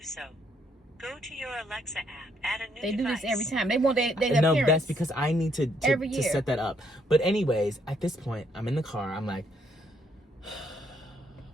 so. Go to your Alexa app, add a new They device. do this every time. They want their no, appearance. that's because I need to Every year. set that up. But anyways, at this point, I'm in the car. I'm like,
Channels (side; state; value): both; normal; correlation 0.71